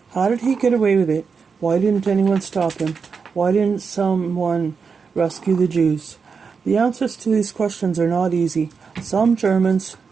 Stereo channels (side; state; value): left; quieter; 5.5 dB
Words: how did he get away with it? Why didn't anyone stop him? Why didn't someone rescue the Jews? The answers to these questions are not easy. Some Germans,